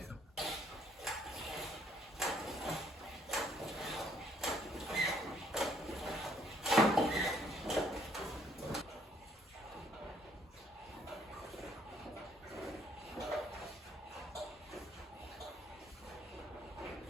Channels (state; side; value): normal; both; correlation 0.66